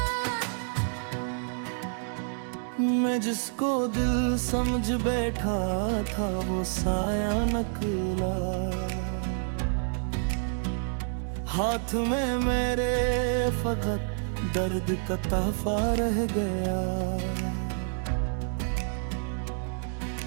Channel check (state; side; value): silent; left; digital silence